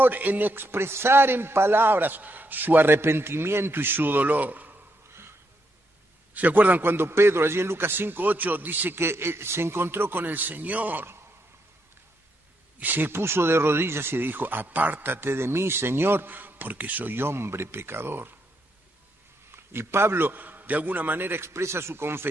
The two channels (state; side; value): normal; both; correlation 0.78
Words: en expresar en palabras su arrepentimiento y su dolor. ¿Se acuerdan cuando Pedro, allí en Lucas 5:8, dice que se encontró con el Señor? Y se puso de rodillas y dijo, apártate de mí, Señor, porque soy hombre pecador. Y Pablo, de alguna manera, expresa su